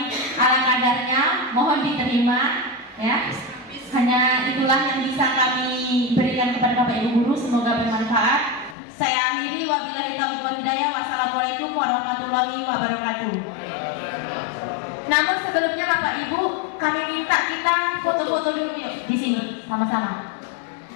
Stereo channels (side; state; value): right; drops out; at 8.8 s